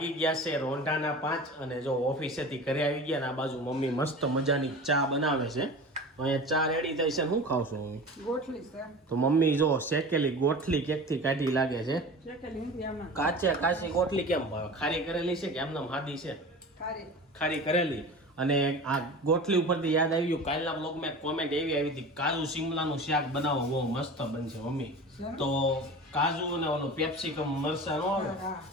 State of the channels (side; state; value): both; normal; correlation 0.35